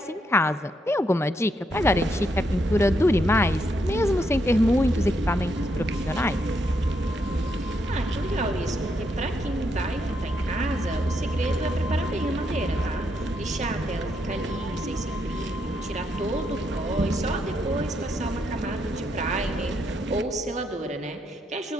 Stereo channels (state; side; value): normal; both; correlation 0.78